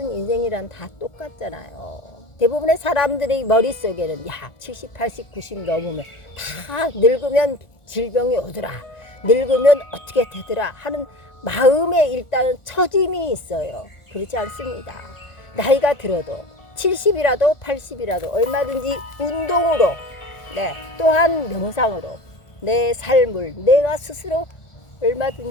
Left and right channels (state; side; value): late; right; 1.4 ms